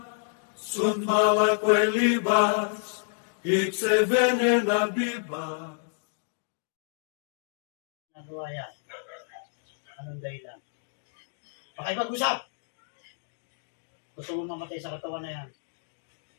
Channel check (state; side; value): silent; right; digital silence